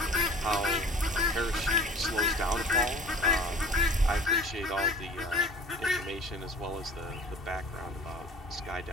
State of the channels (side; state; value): both; normal; correlation 0.45